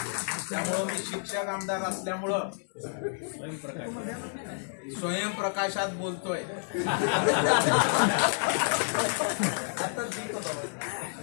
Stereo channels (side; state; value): right; silent; digital silence